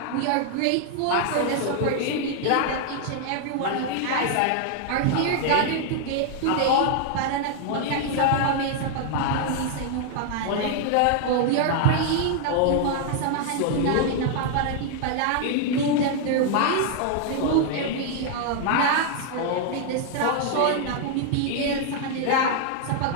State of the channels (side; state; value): both; different; correlation 0.00